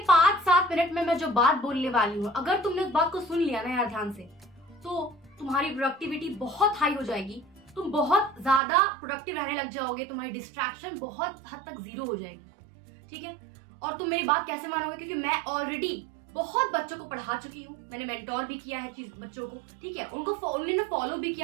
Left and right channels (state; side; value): drops out; left; at 8.6 s